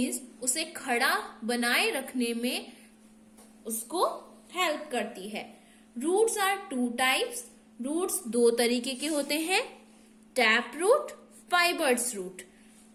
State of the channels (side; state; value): both; identical; correlation 1.00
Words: उसे खड़ा बनाए रखने में उसको हेल्प करती है। Roots are 2 types. रूट्स 2 तरीके के होते हैं, tap root, fibres root.